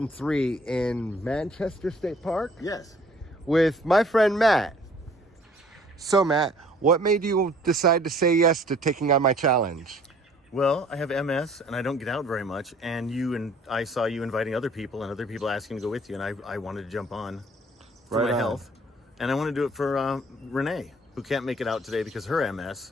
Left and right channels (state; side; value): normal; both; correlation 0.55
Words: in Manchester State Park. Yes. With my friend Matt. So Matt, what made you decide to say yes to taking on my challenge? Well, I have MS and I don't get out very much, and I saw you inviting other people and other people asking to go with you, and I wanted to jump on for Right my on. health, and I want to do it for Renee, who can't make it out today because her